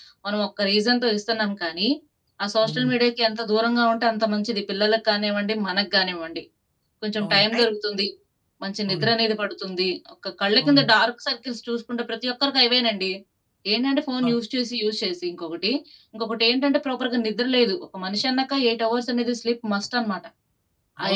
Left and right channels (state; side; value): identical; both; correlation 1.00